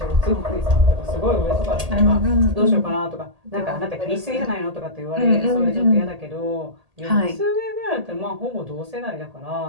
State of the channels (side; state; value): left; late; 1.8 ms